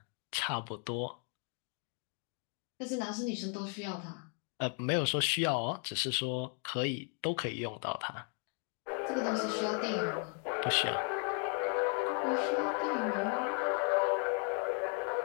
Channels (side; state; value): right; quieter; 38.2 dB